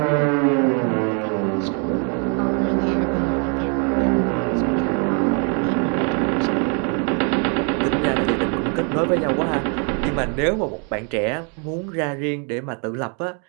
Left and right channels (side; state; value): left; quieter; 39.0 dB